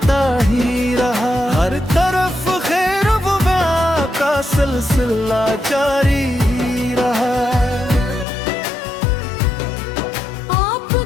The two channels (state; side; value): drops out; right; at 8.2 s